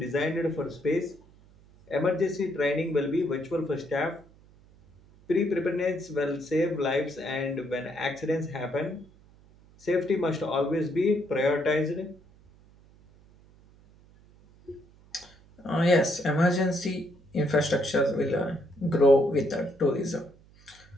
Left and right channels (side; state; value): right; noise; hum, 27 dB below the sound